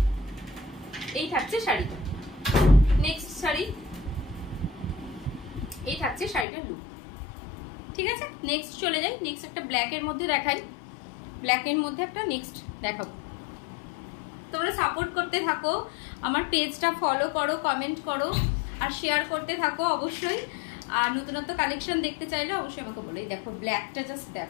এই থাকছে শাড়িটা। নেক্সট শাড়ি, এই থাকছে শাড়িটার লুক, ঠিক আছে? নেক্সট চলে যাই, নেক্সট একটা ব্ল্যাকের মধ্যে দেখাই। ব্ল্যাকের মধ্যে একটা নেক্সট দেখাবো। তোমরা সাপোর্ট করতে থাকো, আমার পেজটা ফলো করো, কমেন্ট করো আর শেয়ার করতে থাকো অবশ্যই। আর নতুনত্ব কালেকশন দেখতে চাইলে অবশ্যই আমাকে বলো। দেখো ব্ল্যাকটা, জাস্ট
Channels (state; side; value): drops out; right; at 6.5 s